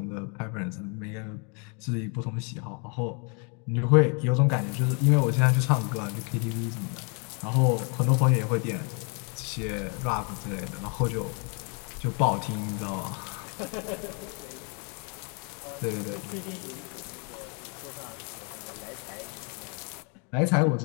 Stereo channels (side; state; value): right; quieter; 36.1 dB